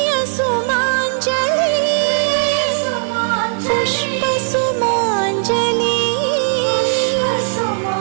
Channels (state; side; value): silent; left; digital silence